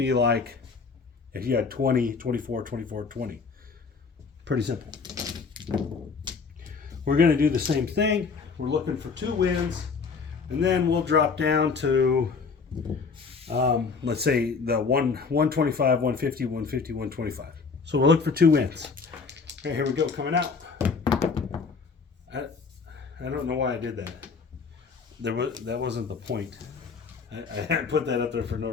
like if you had 20, 24, 24, 20. Pretty simple. We're going to do the same thing. We're looking for 2 wins, and then we'll drop down to, let's say, the 125, 150, 150, 125. So we'll look for 2 wins. Okay, here we go, coming out. I don't know why I did that. That wasn't the point. I put that up there for no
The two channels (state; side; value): quieter; right; 5.0 dB